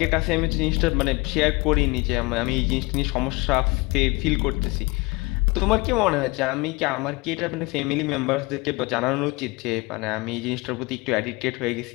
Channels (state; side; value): quieter; right; 24.8 dB